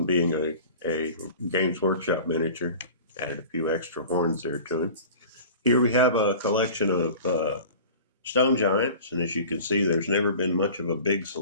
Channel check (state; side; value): inverted; both; correlation -0.41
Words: being a Games Workshop miniature. Added a few extra horns there to him. Here we have a collection of stone giants, and as you can see, there's never been much of a big